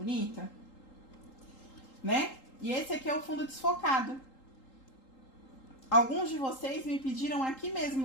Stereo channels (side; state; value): right; late; 3.8 ms